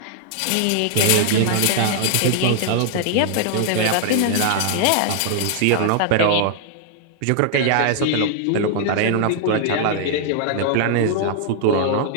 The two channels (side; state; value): both; different; correlation 0.00